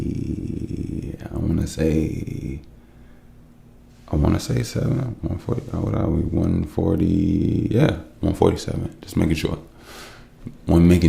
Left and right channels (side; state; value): both; identical; correlation 1.00